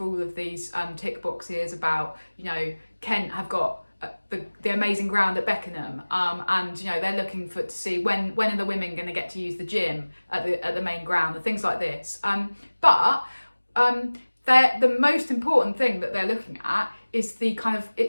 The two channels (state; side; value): inverted; both; correlation -1.00